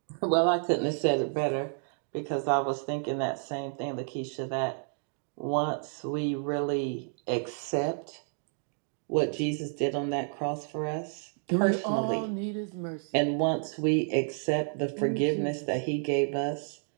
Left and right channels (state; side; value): silent; left; 58 dB below the other